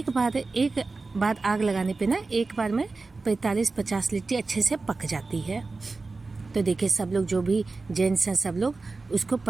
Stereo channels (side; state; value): left; quieter; 3.8 dB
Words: बार आग लगाने पे ना एक बार में 45-50 लिट्टी अच्छे से पक जाती है। तो देखिए सब लोग जो भी जेंट्स हैं सब लोग उसको